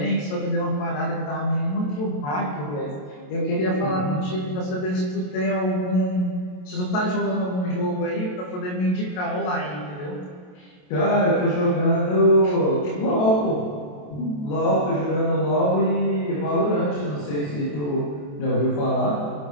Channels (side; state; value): right; late; 27 ms